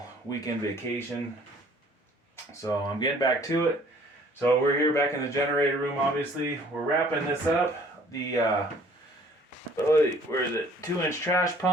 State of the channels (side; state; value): both; normal; correlation 0.56